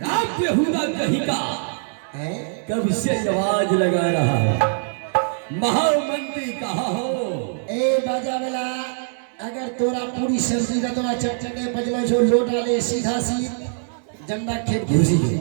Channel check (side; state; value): left; silent; digital silence